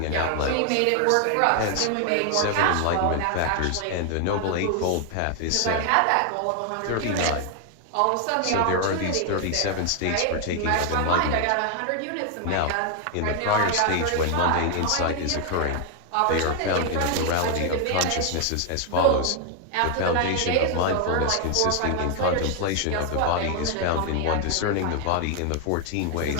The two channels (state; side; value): different; both; correlation 0.00